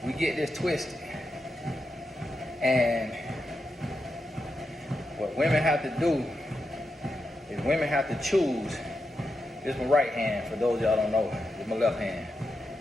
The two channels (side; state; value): both; normal; correlation 0.87